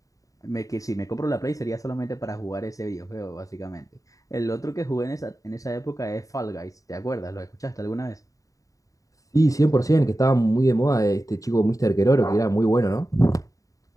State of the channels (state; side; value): late; right; 0.16 ms